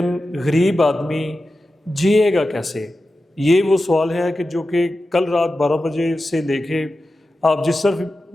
غریب آدمی جیے گا کیسے؟ یہ وہ سوال ہے جو کہ کل رات 12 بجے سے لے کے آپ جس طرف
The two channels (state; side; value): normal; both; correlation 0.93